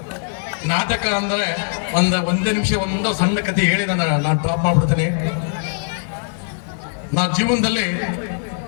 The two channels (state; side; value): silent; right; digital silence